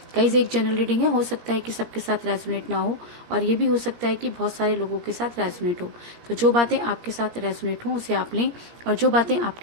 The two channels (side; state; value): left; late; 17 ms